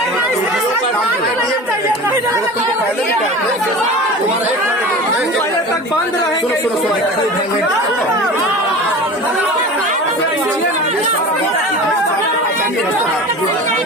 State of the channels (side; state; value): both; normal; correlation 0.34